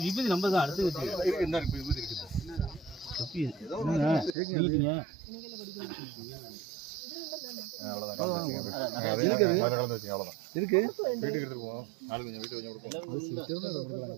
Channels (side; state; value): left; drops out; at 4.4 s